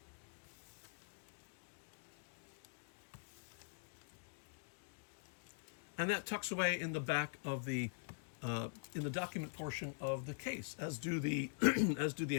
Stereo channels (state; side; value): silent; right; digital silence